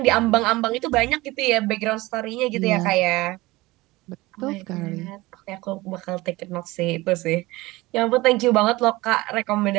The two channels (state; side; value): quieter; left; 20.4 dB